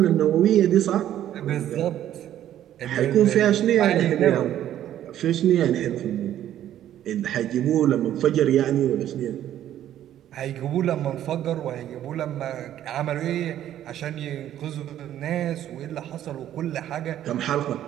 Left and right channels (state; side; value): quieter; left; 11.7 dB